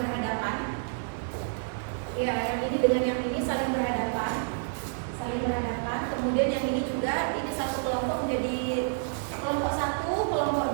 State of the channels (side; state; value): left; silent; digital silence